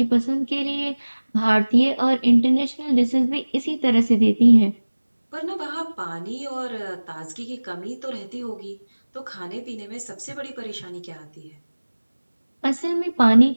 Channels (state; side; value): inverted; both; correlation -1.00